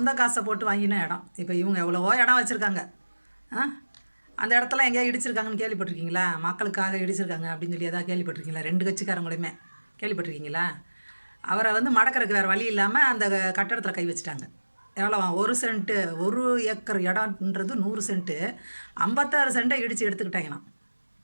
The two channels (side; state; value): both; inverted; correlation -1.00